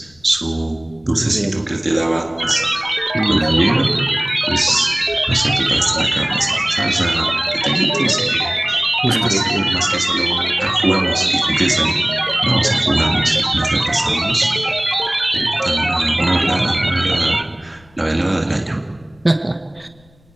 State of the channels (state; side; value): noise; left; rumble, 29 dB below the sound